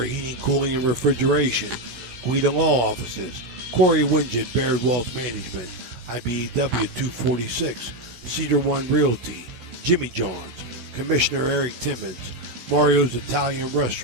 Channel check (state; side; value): late; left; 16 ms